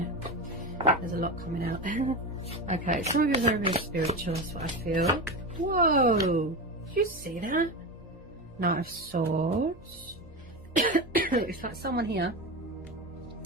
There's a lot coming out. Okay, some of you are very, very spiritual. That's what I feel. Whoa! Did you see that? Knight of Swords. It's like someone here.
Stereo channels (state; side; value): normal; both; correlation 0.21